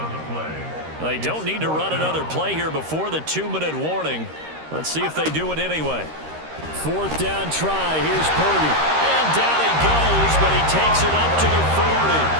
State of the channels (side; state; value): left; late; 13 ms